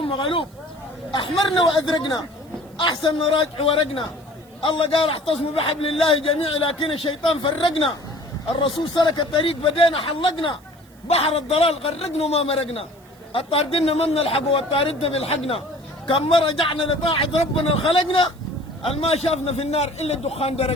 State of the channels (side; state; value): right; noise; hiss, 30 dB below the sound